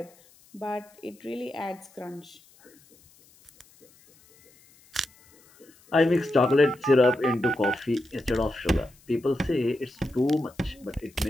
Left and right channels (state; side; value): noise; left; hiss, 29 dB below the sound